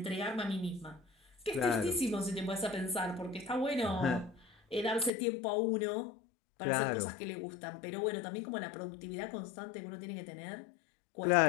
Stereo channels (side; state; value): right; drops out; at 5.1 s